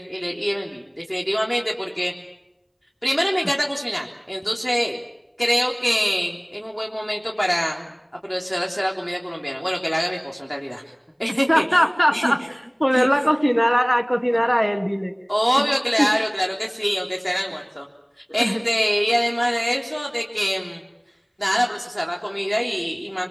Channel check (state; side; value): identical; both; correlation 1.00